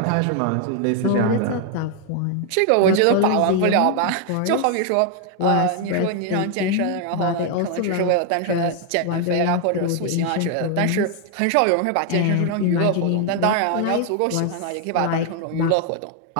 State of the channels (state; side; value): different; both; correlation 0.00